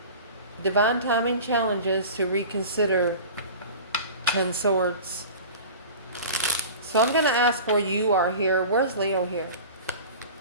Divine timing challenges to reconsider 10 Swords. So I'm going to ask where you are here. Where's Leo here?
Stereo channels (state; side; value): inverted; both; correlation -0.37